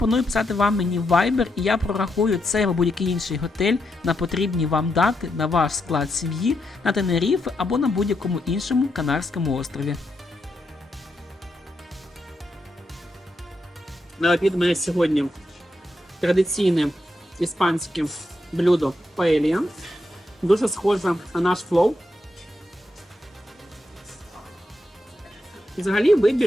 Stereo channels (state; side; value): normal; both; correlation 0.83